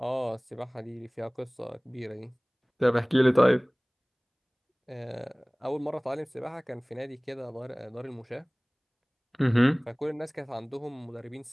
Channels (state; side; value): identical; both; correlation 1.00